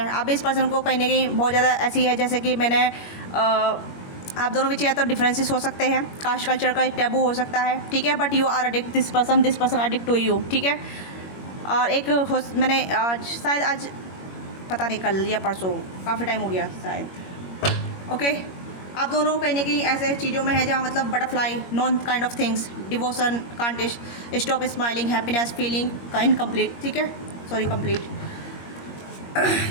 आप भी इस पर्सन को कहीं ना कहीं बहुत ज़्यादा ऐसी है, जैसे कि मैंने आप दोनों में या तो डिफरेंसेस हो सकते हैं, कास्ट कल्चर का एक टैबू हो सकता है, ठीक है, but you are addict this person addict to you, ठीक है। और एक मैंने शायद आज पता नहीं कल या परसों, काफ़ी टाइम हो गया शायद, ओके। आप दोनों कहीं ना कहीं ऐसे चीज़ों में है जहाँ मतलब butterfly, non kind of things, devotion, can't stop smiling, happiness feeling का इनकम्प्लीट, ठीक है, सॉरी कंप्लीट।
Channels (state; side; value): late; right; 21 ms